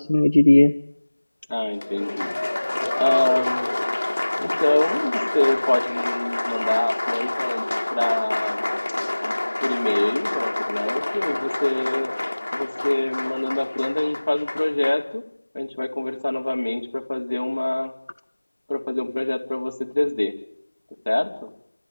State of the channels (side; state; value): both; inverted; correlation -1.00